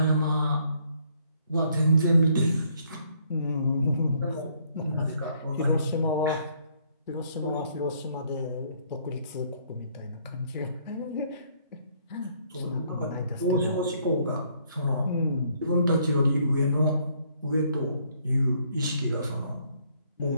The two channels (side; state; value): both; inverted; correlation -0.66